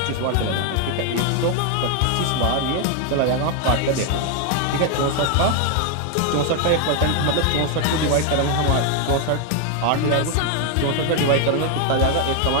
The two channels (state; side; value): different; both; correlation 0.01